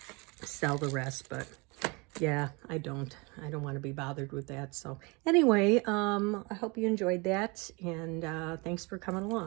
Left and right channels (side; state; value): left; quieter; 28.1 dB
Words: sell the rest, but yeah, I don't want to be bothered with that. So anyway, I hope you enjoyed that, and thanks for coming